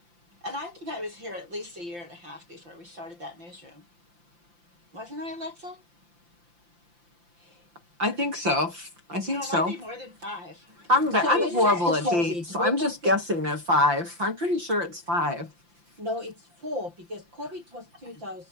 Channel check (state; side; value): late; left; 5.8 ms